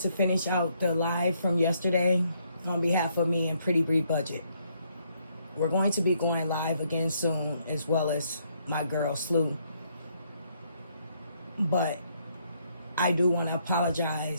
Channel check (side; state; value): both; inverted; correlation -0.71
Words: finish out the live from yesterday on behalf of me and Pretty Bree Budget. We're going to be going live again soon, as well as my girl Slew. But I do want to